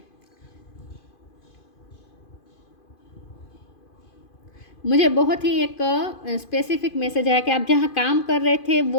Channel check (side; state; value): right; late; 2.5 ms